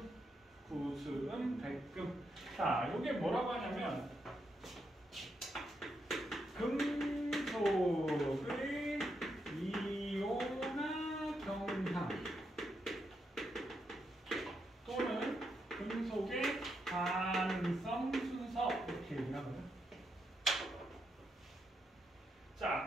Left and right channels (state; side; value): normal; both; correlation 0.81